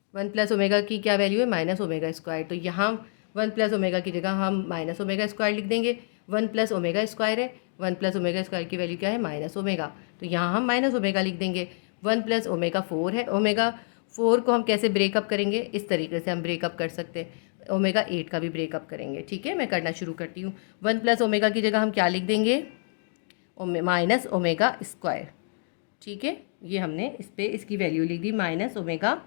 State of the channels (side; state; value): right; silent; digital silence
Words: 1 प्लस ओमेगा की क्या वैल्यू है? Minus omega square. तो यहाँ 1 प्लस ओमेगा की जगह हम माइनस ओमेगा स्क्वायर लिख देंगे। 1 प्लस ओमेगा स्क्वायर है, 1 प्लस ओमेगा स्क्वायर की वैल्यू क्या है? Minus omega. तो यहाँ हम माइनस ओमेगा लिख देंगे। 1 प्लस ओमेगा 4 है। ओमेगा 4 को हम कैसे ब्रेकअप करेंगे? इस तरीके से हम ब्रेकअप कर सकते हैं। ओमेगा 8 का भी ब्रेकअप करेंगे। ठीक है, मैं करना शुरू करती हूँ। 1 प्लस ओमेगा की जगह हम क्या लिख देंगे? Minus omega square. ठीक है, ये हमने इस पर इसकी वैल्यू लिख दी माइनस ओमेगा